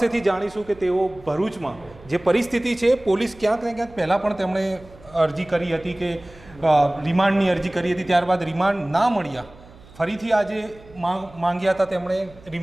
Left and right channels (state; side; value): noise; right; hum, 23 dB below the sound